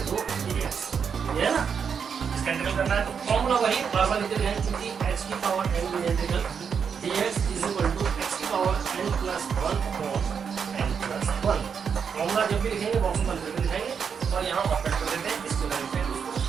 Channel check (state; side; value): quieter; left; 6.7 dB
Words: dx ये है ना इसका इंटीग्रल करना है तो फॉर्मूला वही बार-बार लिखते रहेंगे क्योंकि x की power n integral dx x की power n plus 1 n plus 1। Formula जब भी लिखेंगे बॉक्स में बंद करके लिखेंगे और यहाँ ऑपरेट कर देते हैं इसको लिखते हैं।